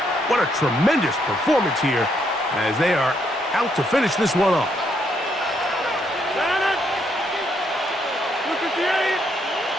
What a tremendous performance here as they are out to finish this one off.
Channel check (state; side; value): normal; both; correlation 0.74